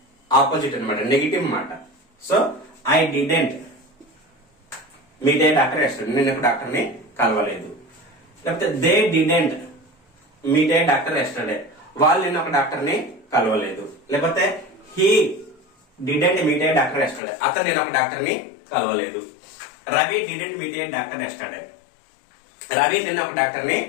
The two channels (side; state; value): right; drops out; at 17.2 s